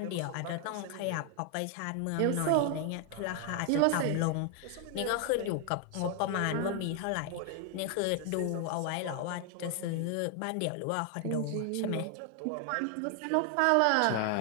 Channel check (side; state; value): both; different; correlation 0.00